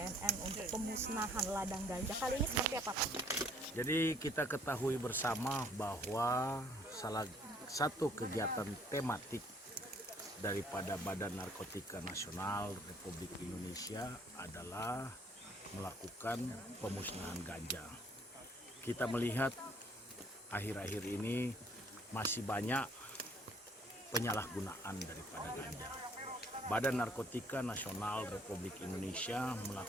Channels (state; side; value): normal; both; correlation 0.61